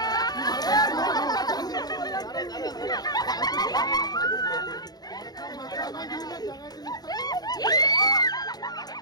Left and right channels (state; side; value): late; right; 0.19 ms